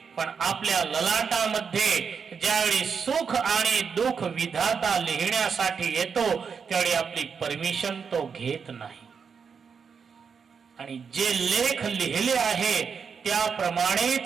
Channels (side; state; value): left; quieter; 6.1 dB